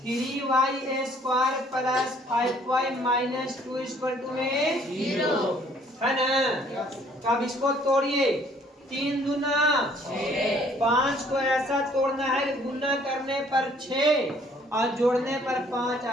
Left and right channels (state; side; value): normal; both; correlation 0.60